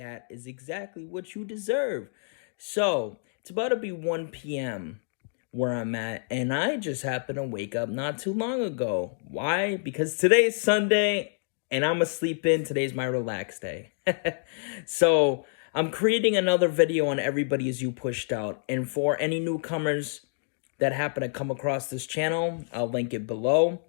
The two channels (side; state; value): right; silent; digital silence